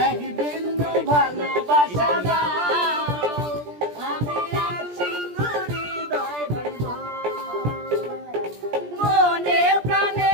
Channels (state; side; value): late; left; 17 ms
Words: এক বিন্দু ভালোবাসা আমি এক সিন্ধুরি হৃদয় দেব। মনে প্রাণে